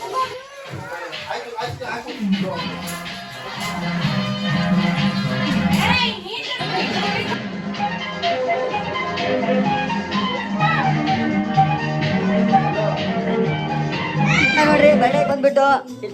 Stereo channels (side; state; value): both; identical; correlation 1.00